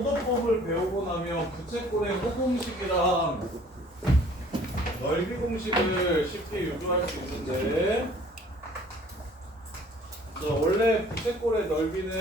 배우고 나면 부채꼴의 호공식이랑 넓이 공식을 쉽게 유도할 수 있는데, 자, 원래 부채꼴의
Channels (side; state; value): both; normal; correlation 0.53